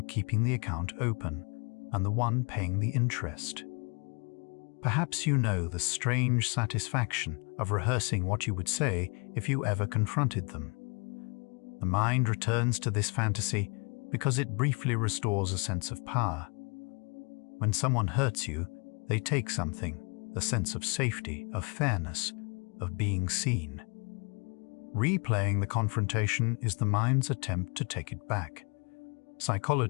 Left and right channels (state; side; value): quieter; right; 33.6 dB